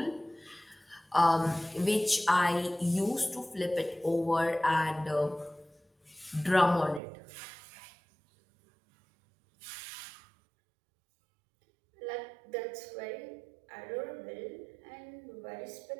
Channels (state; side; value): drops out; left; at 7.0 s